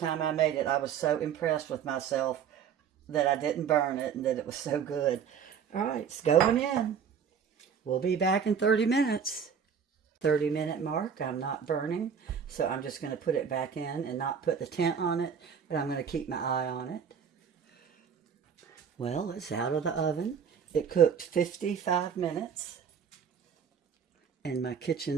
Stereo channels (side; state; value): left; quieter; 7.3 dB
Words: I made it, I was so impressed with myself that I didn't burn it and that it was so good. All right, it's going in. We'll be back in 30 minutes. 30-minute mark, I'm not burning, so I'm just going to put it back in and not put the tent on it, but I'm going to keep my eye on it. Well, it's out of the oven. It cooked 55 minutes, and my